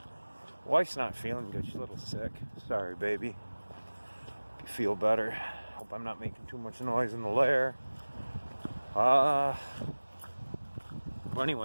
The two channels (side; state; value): both; inverted; correlation -1.00